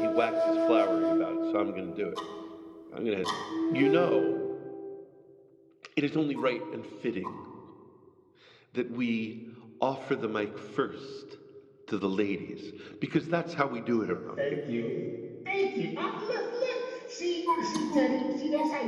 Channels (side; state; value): both; identical; correlation 1.00